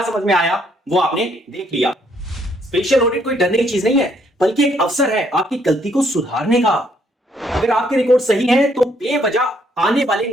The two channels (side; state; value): both; normal; correlation 0.69